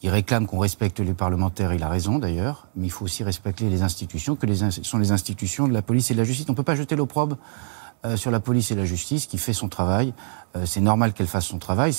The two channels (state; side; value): silent; left; 61 dB below the other